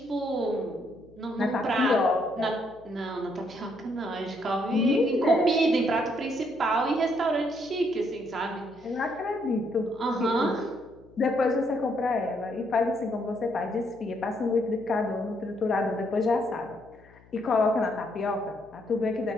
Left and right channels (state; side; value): noise; left; hum, 26 dB below the sound